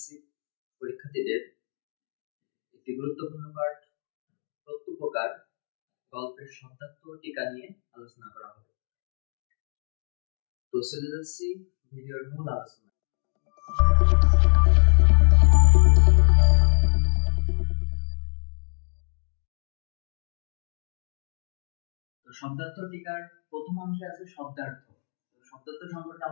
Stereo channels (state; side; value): silent; right; digital silence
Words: পরীক্ষার্থীদের একটি গুরুত্বপূর্ণ পাঠ প্রত্যুপকার গল্পের শব্দার্থ ও টিকা নিয়ে আলোচনা করা হবে। তো চলে যাচ্ছি ভিডিওর মূল আলোচনা। শব্দার্থ টিকার প্রথম অংশে আছে শব্দার্থ। শব্দার্থ সম্পর্কে